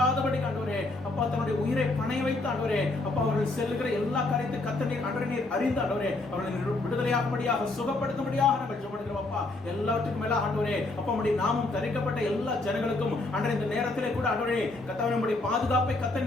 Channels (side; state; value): right; quieter; 3.0 dB